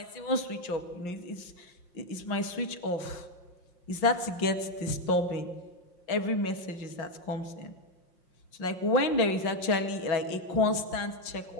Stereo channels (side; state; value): right; late; 5.7 ms